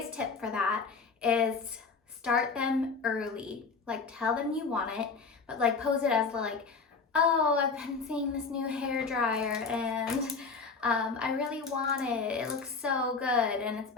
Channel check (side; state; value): right; quieter; 4.7 dB